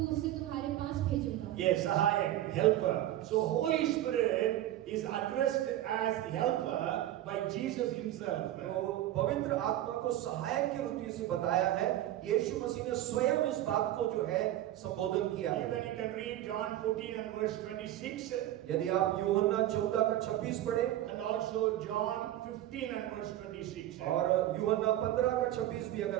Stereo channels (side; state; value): left; quieter; 13.4 dB